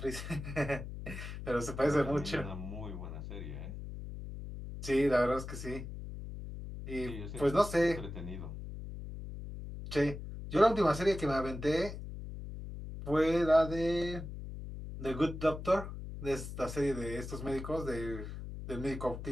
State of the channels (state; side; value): noise; left; hum, 9 dB below the sound